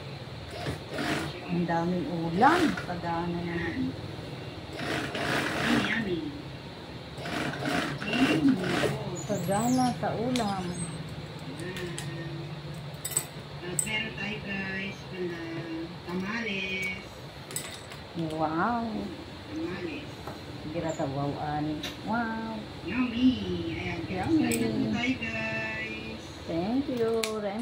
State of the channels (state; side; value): identical; both; correlation 1.00